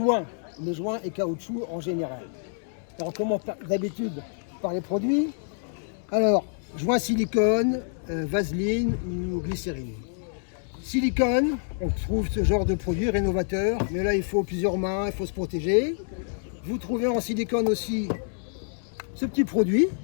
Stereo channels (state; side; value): silent; right; 60 dB below the other